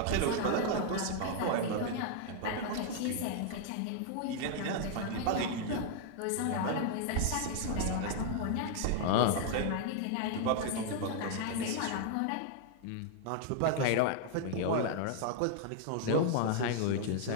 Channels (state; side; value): different; both; correlation 0.00